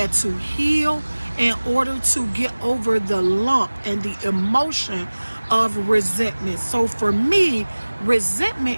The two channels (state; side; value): inverted; both; correlation -1.00